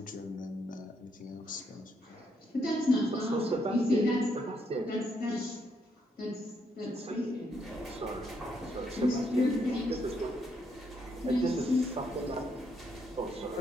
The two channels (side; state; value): both; normal; correlation 0.75